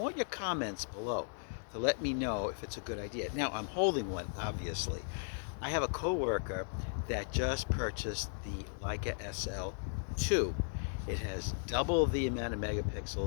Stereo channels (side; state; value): right; silent; digital silence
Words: your comments below to let me know if it's a good idea. Now, I'm holding one, obviously. I have a coworker that just purchased the Leica SL2. It has double the amount of